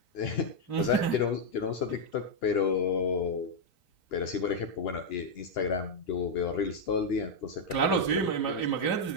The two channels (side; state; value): right; late; 2.9 ms